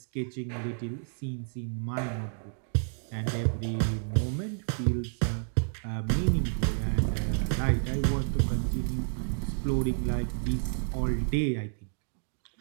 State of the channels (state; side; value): silent; left; digital silence